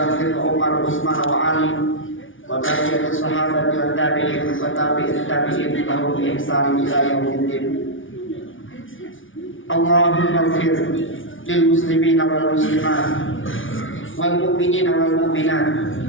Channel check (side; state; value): right; late; 0.57 ms